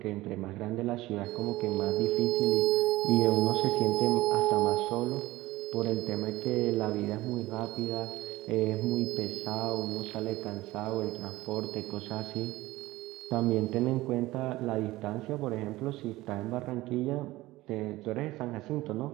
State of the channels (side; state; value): left; quieter; 18.2 dB